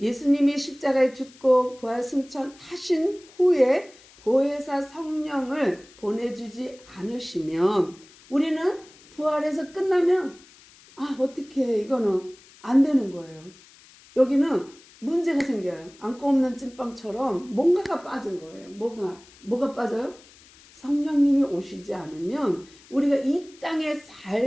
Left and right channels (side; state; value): left; noise; hiss, 25 dB below the sound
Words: 십자가에 죽고 부활 승천하신 후에 보혜사 성령을 보내주지 않으시면 우리는 부활해서 끝나면 어떻게 이거는 안 되는 거예요. 여기는 문제가 생겨요. 안고 없는 찐빵처럼 뭔가가 빠진 거예요. 뭐가 빠져요? 성령님이 오시지 않으면 우리가 이 땅의